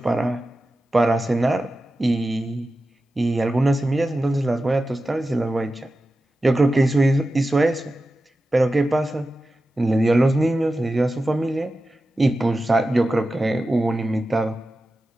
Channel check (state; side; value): normal; both; correlation 0.93